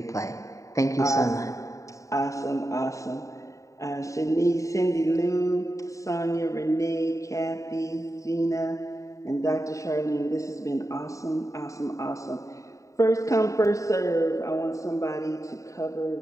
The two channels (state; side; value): late; right; 0.16 ms